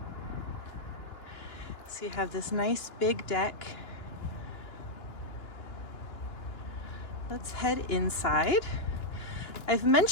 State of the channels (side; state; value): right; late; 2.9 ms